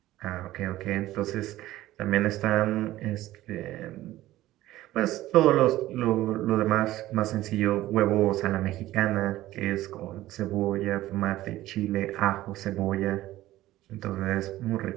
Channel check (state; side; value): quieter; left; 15.6 dB